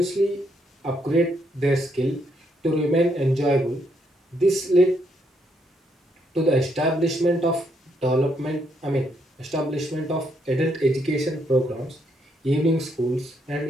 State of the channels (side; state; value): both; normal; correlation 0.75